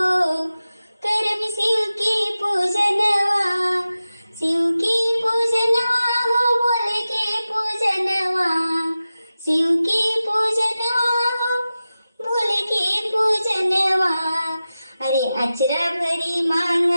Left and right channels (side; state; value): both; inverted; correlation -0.94